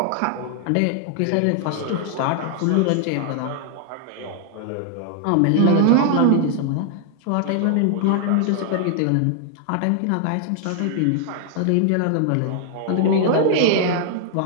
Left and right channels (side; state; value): both; different; correlation 0.00